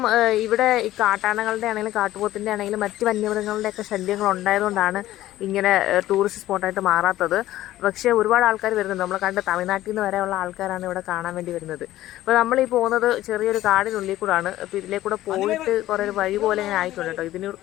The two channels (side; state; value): right; quieter; 14.7 dB